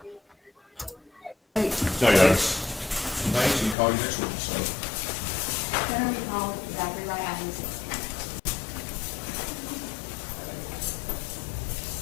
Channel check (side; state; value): right; drops out; at 3.8 s